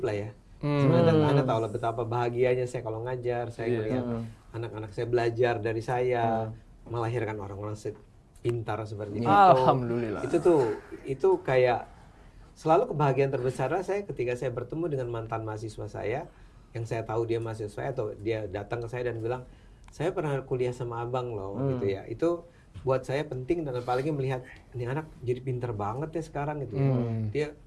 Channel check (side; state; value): both; identical; correlation 1.00